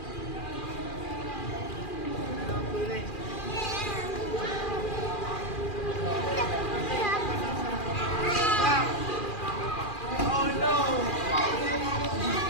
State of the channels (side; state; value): right; late; 2.4 ms